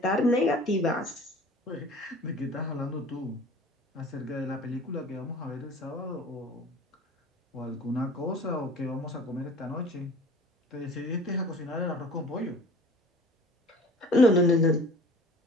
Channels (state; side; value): normal; both; correlation 0.45